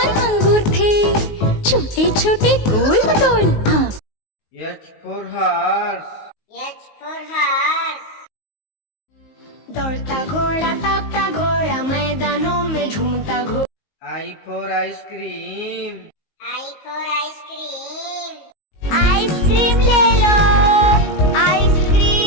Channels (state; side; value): late; right; 19 ms